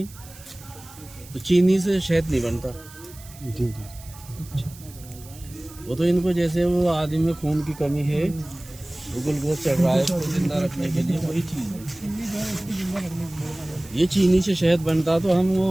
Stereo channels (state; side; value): noise; right; hiss, 20 dB below the sound